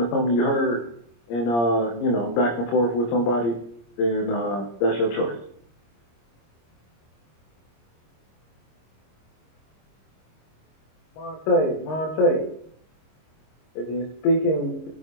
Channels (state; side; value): late; right; 26 ms